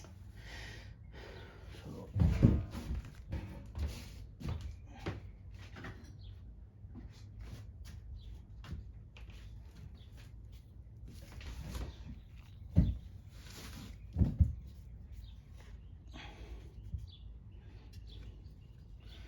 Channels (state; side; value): identical; both; correlation 1.00